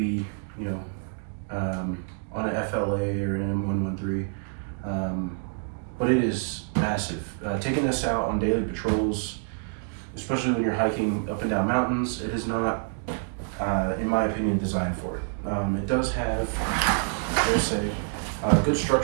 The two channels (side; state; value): left; silent; 60 dB below the other